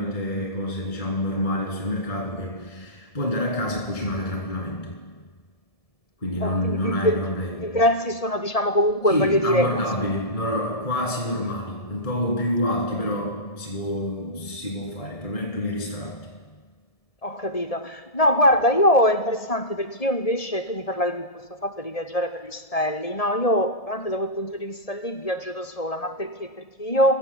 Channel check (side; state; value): right; late; 1.7 ms